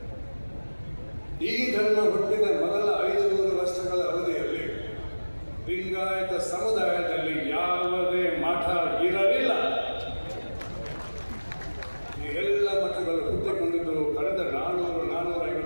ಈ ಧರ್ಮ ಹುಟ್ಟಿದ ಮೊದಲ 500 ವರ್ಷಗಳ ಅವಧಿಯಲ್ಲಿ ಲಿಂಗಾಯತ ಸಮುದಾಯದಲ್ಲಿ ಯಾವುದೇ ಮಠ ಇರಲಿಲ್ಲ. ಈ ಎಲ್ಲ ಮಠಗಳು ಹುಟ್ಟಿಕೊಂಡಿದ್ದು ಕಳೆದ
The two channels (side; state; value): both; inverted; correlation -1.00